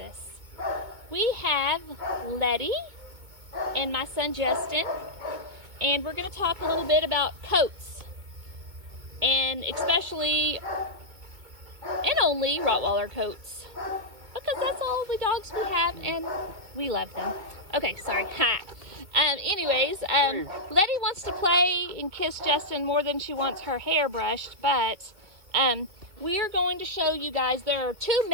We have Letty and my son Justin, and we're going to talk a little bit about coats, and especially and only Rottweiler coats, because that's all the dogs we have and we love them. Okay, sorry. Anyways, Letty wants to play and kiss Justin more than she wants her hair brushed, but we are going to show you guys there are two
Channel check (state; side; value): late; left; 2.2 ms